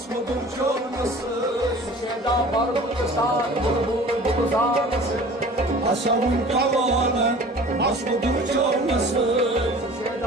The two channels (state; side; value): normal; both; correlation 0.44